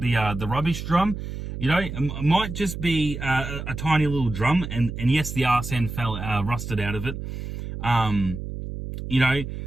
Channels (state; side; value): noise; right; hum, 7 dB below the sound